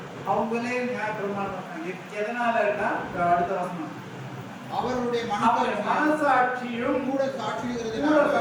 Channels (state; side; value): identical; both; correlation 1.00